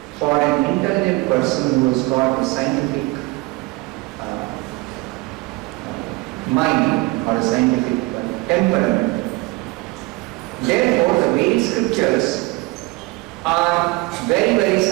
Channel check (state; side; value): quieter; left; 23.8 dB